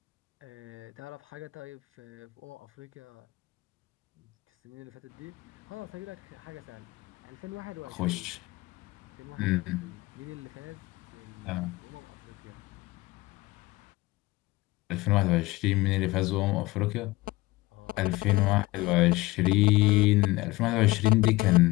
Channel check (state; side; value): quieter; right; 20.2 dB